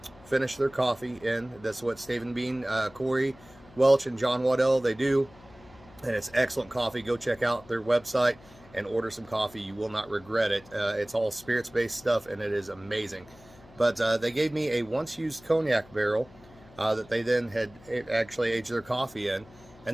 finish their coffee in. That's what Stave and Bean, Corey Welch and John Waddell, they do. And it's excellent coffee. Go check out their website and order some coffee. You will not regret it. It's all spirits-based stuff, and it is amazing. But they gave me a once-used cognac barrel that they then had actually aged their coffee in.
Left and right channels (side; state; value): left; noise; hum, 23 dB below the sound